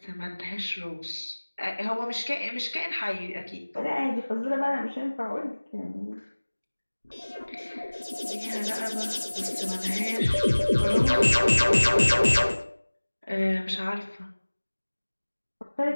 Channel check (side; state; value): both; inverted; correlation -1.00